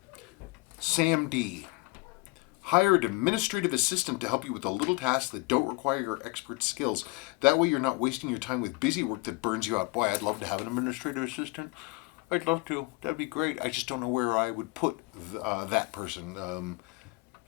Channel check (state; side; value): quieter; right; 25.2 dB